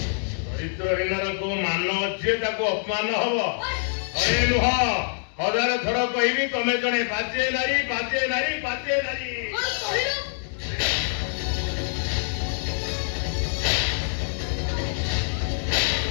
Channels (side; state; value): right; silent; digital silence